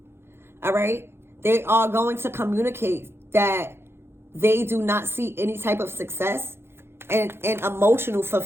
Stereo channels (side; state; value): left; late; 0.12 ms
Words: All right. They are going to communicate that they do not see any type of success and emotional